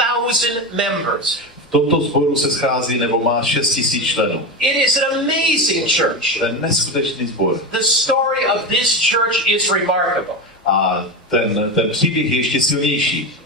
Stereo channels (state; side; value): normal; both; correlation 0.18